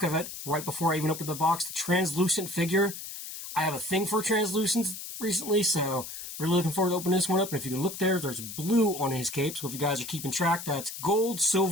of it right before I even opened the box. The translucent figure. I have a thing for translucents recently, so really looking forward to opening this one up. And if you can look there, there's blue on his cape. So if you guys are keeping track, that's gold,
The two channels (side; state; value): left; noise; hiss, 9 dB below the sound